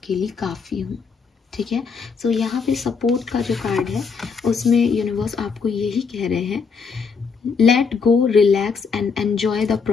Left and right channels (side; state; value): right; quieter; 5.4 dB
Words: काफ़ी हूँ, ठीक है। सो यहाँ पे सपोर्ट का जो कार्ड है उसमें यूनिवर्स आपको यही कह रहे हैं, let go, relax and enjoy the